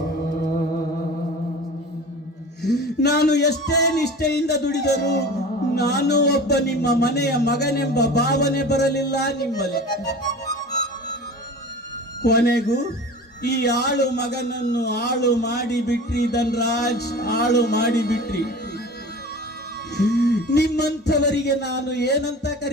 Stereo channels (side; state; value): both; normal; correlation 0.37